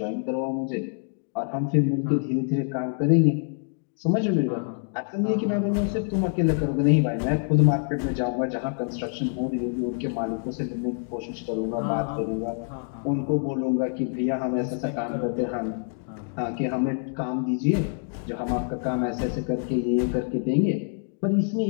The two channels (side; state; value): right; silent; 61 dB below the other